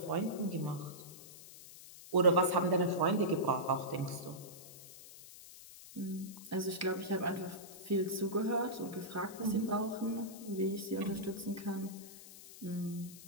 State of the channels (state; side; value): noise; left; hiss, 16 dB below the sound